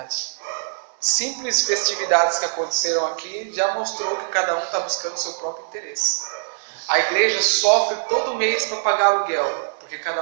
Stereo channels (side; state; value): left; silent; 64 dB below the other